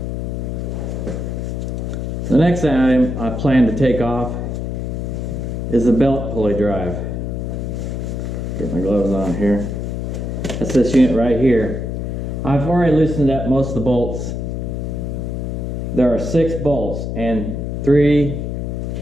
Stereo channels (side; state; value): left; noise; hum, 3 dB below the sound